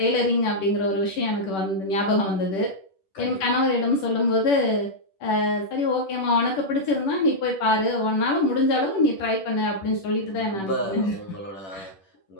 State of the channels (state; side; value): late; right; 10 ms